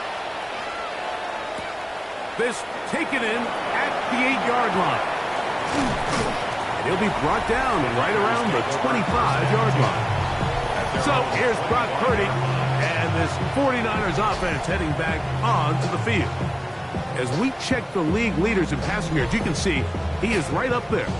This taken in at the 8-yard line. And he'll be brought down right around the 25-yard line. So here's Brock Purdy and this 49ers offense heading back onto the field. As we check the league leaders in passing yards, you can see he is right up there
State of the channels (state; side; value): identical; both; correlation 1.00